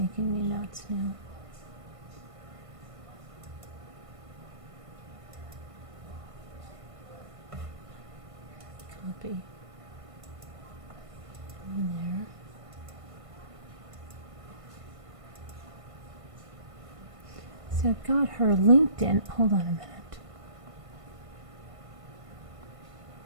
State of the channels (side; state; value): left; late; 1.5 ms